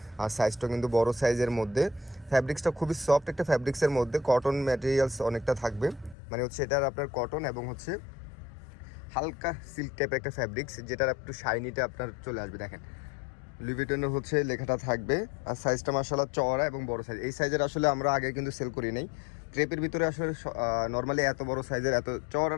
আর সাইজটা কিন্তু বড় সাইজের মধ্যে, ফ্যাব্রিক্সটা খুবই সফট একটা ফ্যাব্রিক্সের মধ্যে, কটন ম্যাটেরিয়ালস অনেকটা থাকবে, মানে হচ্ছে এটার আপনার কটন এবং হচ্ছে হালকা সিল্ক টাইপের একটা ফ্যাব্রিক্স, যেটার একটু শাইনিটা আপনার চলে আসবে। দেখেন লুই ভিটনের হচ্ছে লেখাটা থাকবে। আর সাইজটা মাশাআল্লাহ চওড়া এবং বড় সাইজ। এই সাইজের আসলে আমরা আগে কিন্তু সেল করি নাই। ক্রেপের ভিতরে আসলে নর্মালি এত বড় সাইজের এত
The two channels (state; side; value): drops out; right; at 6.2 s